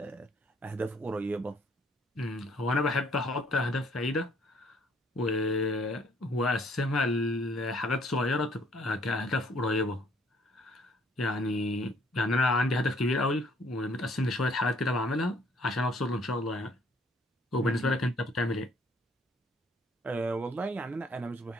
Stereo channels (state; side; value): normal; both; correlation 0.62